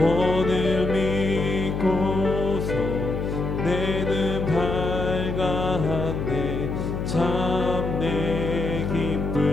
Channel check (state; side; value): noise; left; hum, 3 dB below the sound